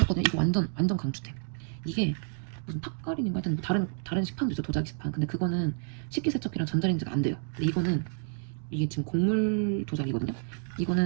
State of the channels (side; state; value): left; silent; 58 dB below the other